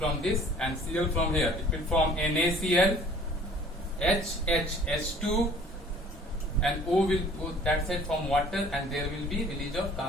this and Cl from here. It will form NaCl, H2, and O will go that side from water, and there will be release of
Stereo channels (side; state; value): both; normal; correlation 0.52